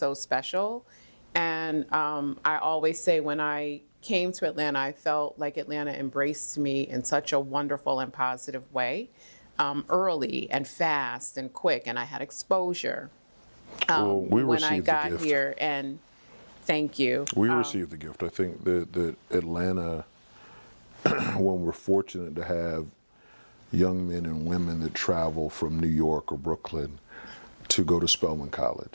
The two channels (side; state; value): both; inverted; correlation -1.00